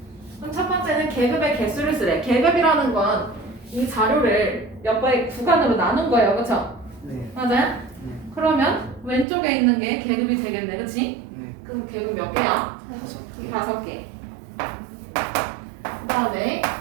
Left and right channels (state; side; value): drops out; left; at 9.2 s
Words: 그럼 첫 번째는 계급의 개수를 쓰래. 계급이라는 건 이 자료를 몇 번의 구간으로 나눈 거예요. 그쵸? 네. 맞아요? 네. 그러면 왼쪽에 있는 게 계급이 되겠네. 그치? 네. 그럼 계급 몇 개야? 5개. 그 다음에